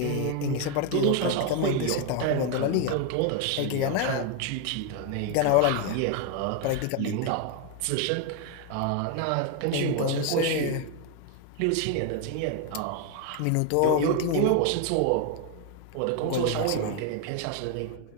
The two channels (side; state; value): both; different; correlation 0.01